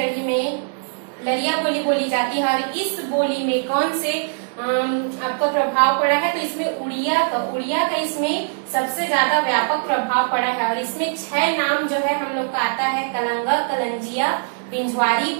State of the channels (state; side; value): silent; left; digital silence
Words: में लरिया बोली बोली जाती है। और इस बोली में कौन से आपको प्रभाव पड़ा है, तो इसमें उड़िया का इसमें सबसे ज्यादा व्यापक प्रभाव पड़ा है। और इसमें 6 नाम जो है हम लोग का आता है, कलंगा, कलंजिया, पिंजवारी,